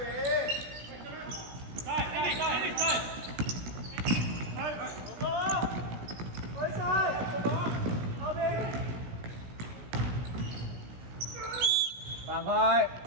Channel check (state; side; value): late; left; 16 ms